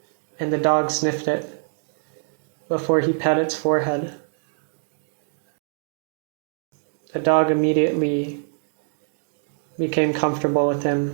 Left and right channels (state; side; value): silent; left; digital silence